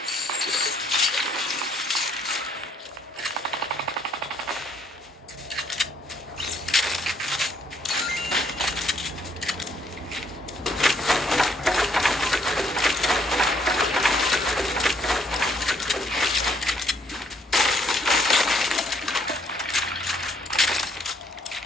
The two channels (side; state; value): both; normal; correlation 0.68